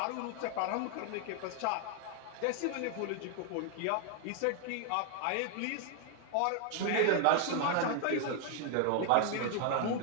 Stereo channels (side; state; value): both; different; correlation 0.00